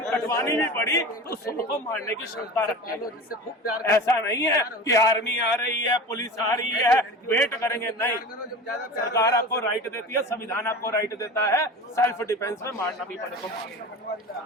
कटवानी भी पड़ी तो सबको मारने की क्षमता रखते हैं। ऐसा नहीं है कि आर्मी आ रही है, पुलिस आ रही है, वेट करेंगे, नहीं। सरकार आपको राइट देती है, संविधान आपको राइट देता है, सेल्फ डिफेंस में मारना भी पड़े तो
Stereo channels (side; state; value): both; normal; correlation 0.33